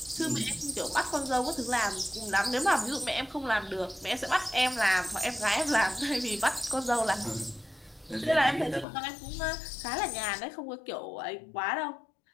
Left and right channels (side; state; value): right; drops out; at 8.8 s